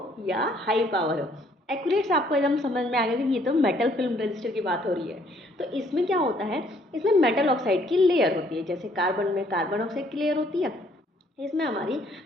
या हाई पावर हो। एक्यूरेट से आपको एकदम समझ में आ गया कि ये तो मेटल फिल्म रजिस्टर की बात हो रही है। तो इसमें क्या होता है, इसमें मेटल ऑक्साइड की लेयर होती है। जैसे कार्बन में कार्बन ऑक्साइड की लेयर होती है, इसमें हमारी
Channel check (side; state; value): both; normal; correlation 0.64